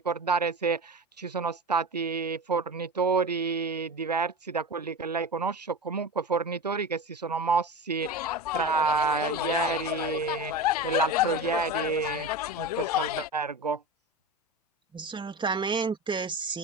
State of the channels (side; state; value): both; normal; correlation 0.27